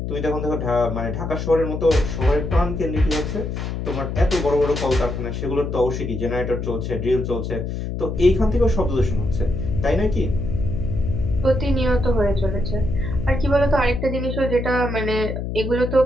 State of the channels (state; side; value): noise; left; hum, 4 dB below the sound